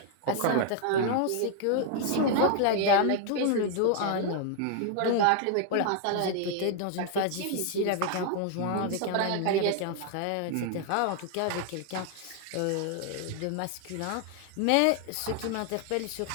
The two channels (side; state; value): both; different; correlation 0.00